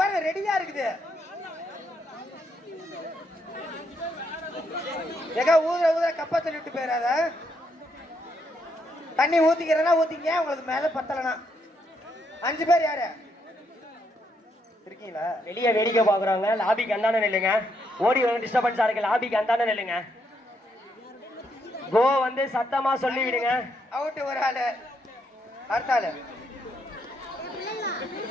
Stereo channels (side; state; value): both; normal; correlation 0.76